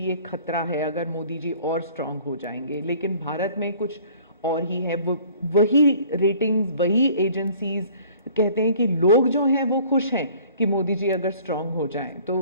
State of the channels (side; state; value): both; inverted; correlation -0.52